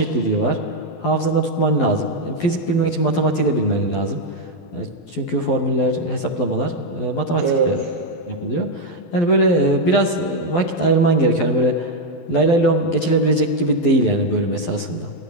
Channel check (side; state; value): right; late; 12 ms